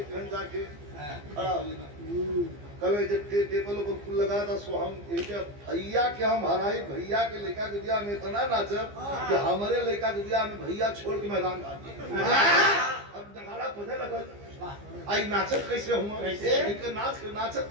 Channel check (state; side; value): late; left; 15 ms